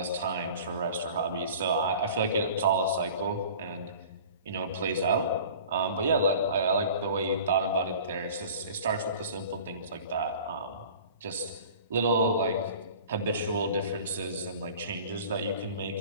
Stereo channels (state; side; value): inverted; both; correlation -0.44